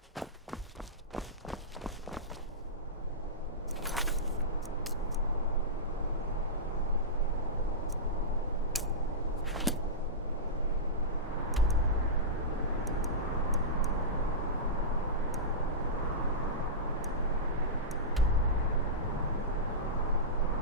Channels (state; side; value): normal; both; correlation -0.15